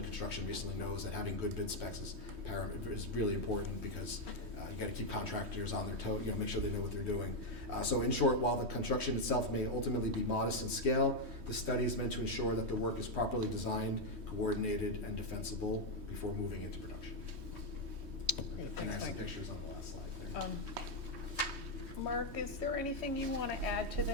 construction recently knows that having good bid specs is really important, because you gotta keep contractors on their toe, make sure they know what they're doing. So in short, while the construction itself may ultimately be modest in scale, the study is meant to ensure that the work is properly designed, coordinated, and defensible before moving into production. Great, And I thanks, have some Mike. pictures on the last slide there. Mark, is there anything you want to add to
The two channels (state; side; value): late; left; 3.2 ms